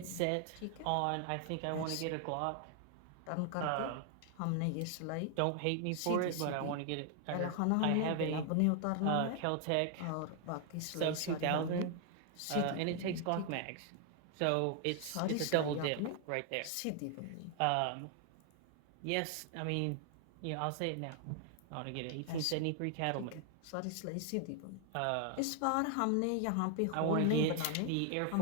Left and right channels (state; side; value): different; both; correlation 0.00